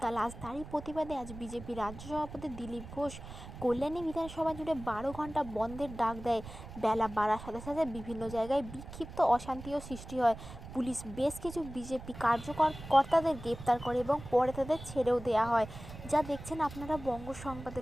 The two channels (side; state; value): right; noise; rumble, 13 dB below the sound